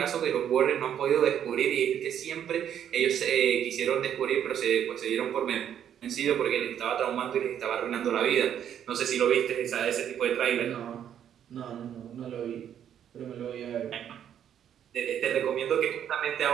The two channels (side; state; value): left; quieter; 9.6 dB